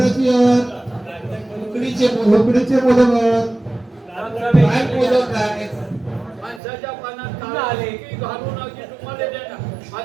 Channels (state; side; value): drops out; left; at 6.6 s